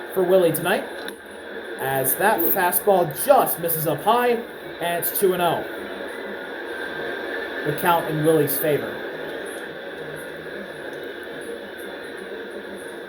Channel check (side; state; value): both; identical; correlation 1.00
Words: for Willie tonight. As that fastball just misses up high, and it's 2-0. The count in Willie's favor.